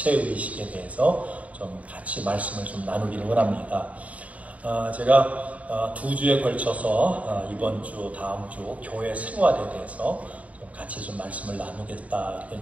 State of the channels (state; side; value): late; left; 0.069 ms